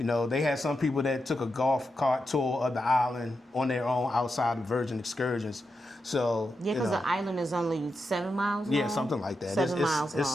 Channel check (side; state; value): both; normal; correlation 0.87